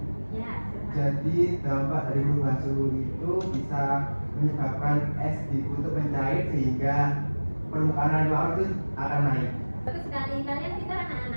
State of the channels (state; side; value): inverted; both; correlation -1.00